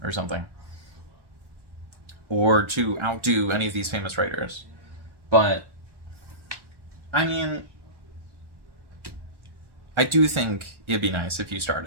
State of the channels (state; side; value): late; left; 1.4 ms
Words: or something. Or to outdo any of these famous writers. But, I mean, I do think it'd be nice if you